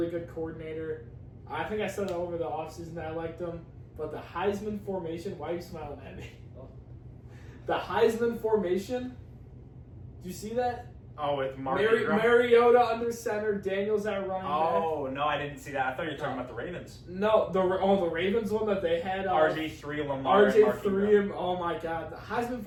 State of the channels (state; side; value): identical; both; correlation 1.00